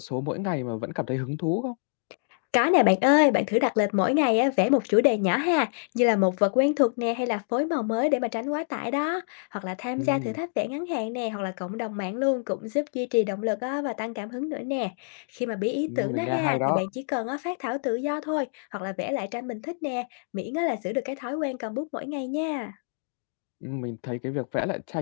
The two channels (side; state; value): right; silent; digital silence